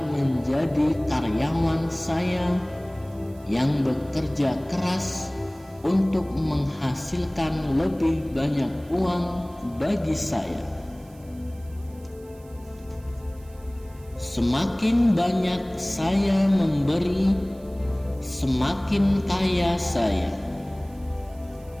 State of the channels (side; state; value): right; noise; hiss, 28 dB below the sound